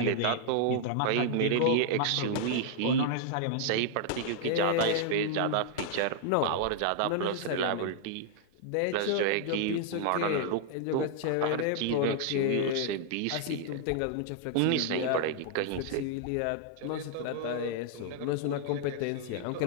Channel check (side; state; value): both; different; correlation -0.01